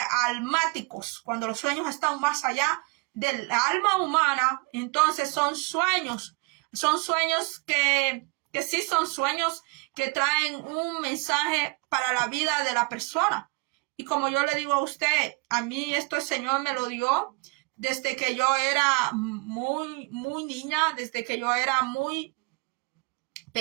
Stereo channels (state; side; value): quieter; left; 29.1 dB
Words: almáticos, cuando los sueños están más allá del alma humana, entonces son sueños que sí son sueños que traen un mensaje para la vida de la persona. Y como yo le digo a usted, a mí esto el Señor me lo dio desde que yo era muy, muy niña, desde que yo era muy